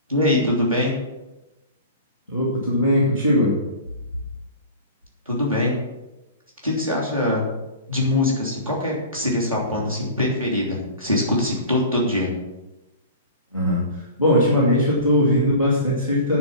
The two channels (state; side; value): inverted; both; correlation -0.37